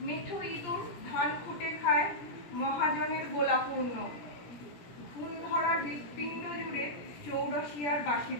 মেঠো ইঁদুর ধান খুঁটে খায়, মহাজনের গোলাপূর্ণ। ঘুম ধরা হৃৎপিণ্ড জুড়ে চৌরসিয়ার বাঁশি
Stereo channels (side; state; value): right; late; 17 ms